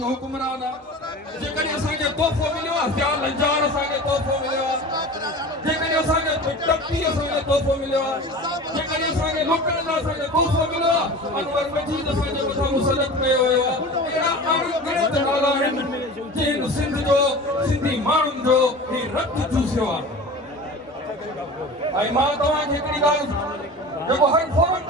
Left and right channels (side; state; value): both; normal; correlation 0.36